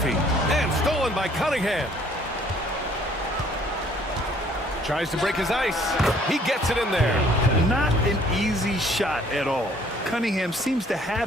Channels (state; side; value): normal; both; correlation 0.59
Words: And stolen by Cunningham. Tries to break his ice. He gets it in there. Not an easy shot at all. Cunningham seems to